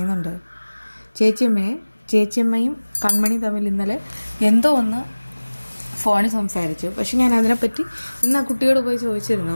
ചേച്ചിയമ്മയും കൺമണി തമ്മിൽ ഇന്നലെ എന്തോ ഒന്ന് ഫോണിൽ സംസാരിച്ചു. പക്ഷെ ഞാൻ അതിനെപ്പറ്റി ഇന്ന് ആ കുട്ടിയോട് പോയി ചോദിച്ചിരുന്നു.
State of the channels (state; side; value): inverted; both; correlation -1.00